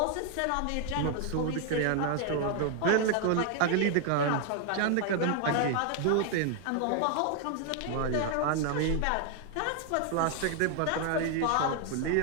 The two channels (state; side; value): different; both; correlation 0.00